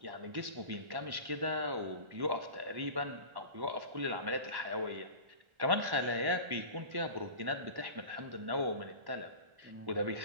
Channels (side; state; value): left; late; 1.1 ms